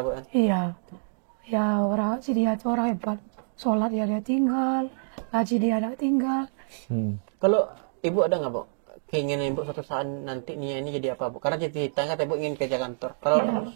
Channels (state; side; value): silent; left; digital silence